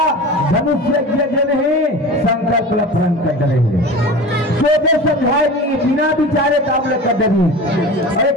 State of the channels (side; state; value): both; normal; correlation 0.34